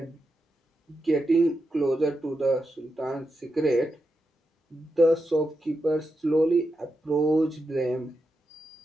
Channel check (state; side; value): normal; both; correlation 0.87